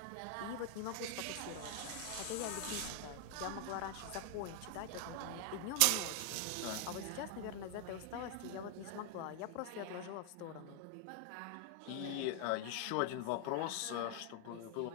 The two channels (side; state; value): both; different; correlation 0.00